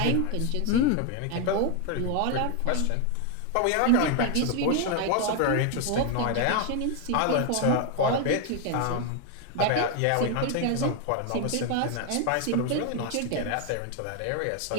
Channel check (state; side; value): different; both; correlation 0.01